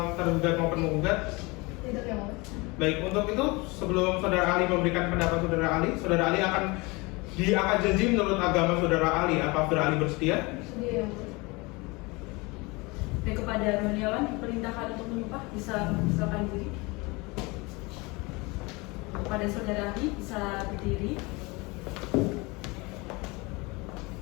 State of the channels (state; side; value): quieter; right; 25.5 dB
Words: tergugat maupun menggugat? Tidak yang mulia. Baik, untuk itu sebelum saudara ahli memberikan pendapat saudara ahli akan diangkat janji menurut agama saudara ahli. Apa saudara ahli bersedia? Sedia yang mulia. Dan kepada Roniawan diperintahkan untuk menyumpah, bisa mempersilakan diri. Kepada saudara ahli bisa berdiri.